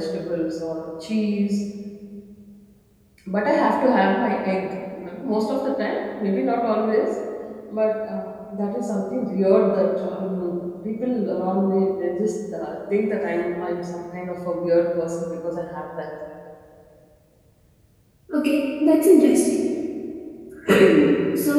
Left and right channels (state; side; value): identical; both; correlation 1.00